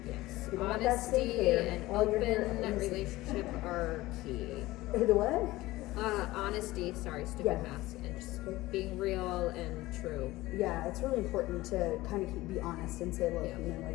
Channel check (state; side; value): quieter; right; 18.3 dB